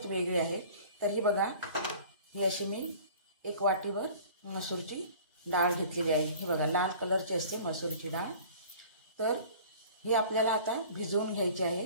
वेगळी आहे। तर ही बघा, ही अशी मी एक वाटीवर मसूरची डाळ घेतलेली आहे। ही बघा लाल कलरची असते मसूरची डाळ। तर ही आपल्याला आता भिजवून घ्यायची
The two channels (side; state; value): both; inverted; correlation -0.46